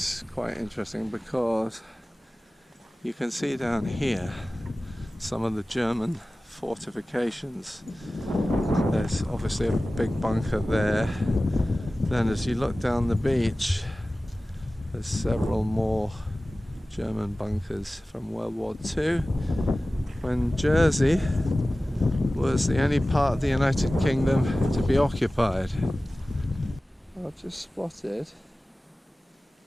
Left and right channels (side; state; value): both; normal; correlation 0.97